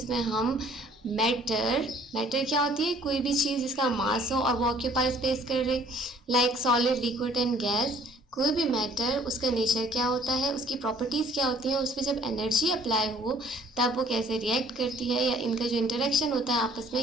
हम मैटर क्या होती है? कोई भी चीज़ जिसका मास हो और वो ऑक्यूपाई स्पेस कर रहे, like solid, liquid and gas. कोई भी मैटर, उसका नेचर क्या होता है, उसकी प्रॉपर्टीज़ क्या होती हैं, उस पर जब एनर्जी अप्लाई हो तब वो कैसे रिएक्ट करती है, या इनका जो इंटरेक्शन होता है आपस में,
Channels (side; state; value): both; normal; correlation 0.57